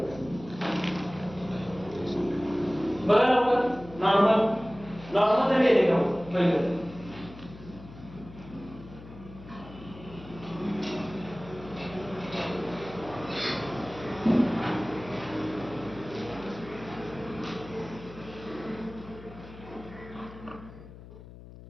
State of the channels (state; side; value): noise; left; hum, 16 dB below the sound